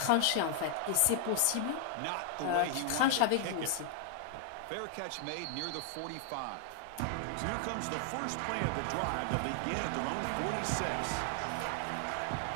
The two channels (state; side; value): different; both; correlation 0.00